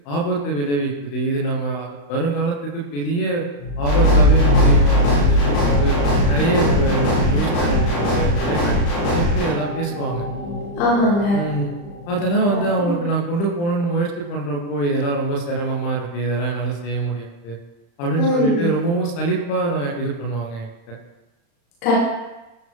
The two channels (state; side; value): late; right; 35 ms